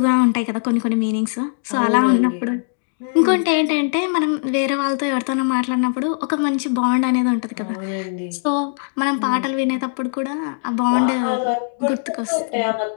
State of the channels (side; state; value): right; silent; digital silence